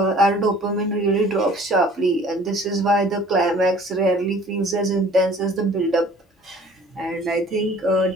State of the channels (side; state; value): both; normal; correlation 0.51